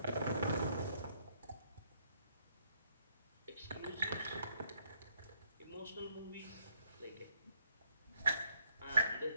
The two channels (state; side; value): inverted; both; correlation -0.70